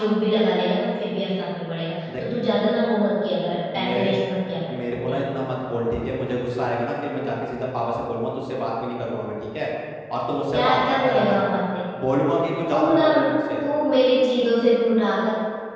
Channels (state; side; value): identical; both; correlation 1.00